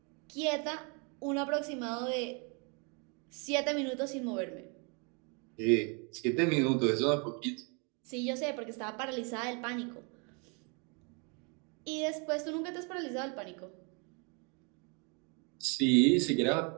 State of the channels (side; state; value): left; quieter; 34.3 dB